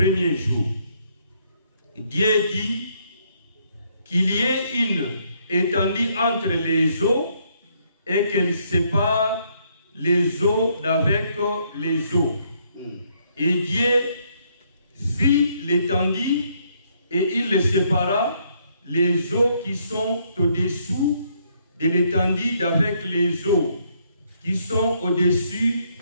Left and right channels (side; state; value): both; inverted; correlation -0.71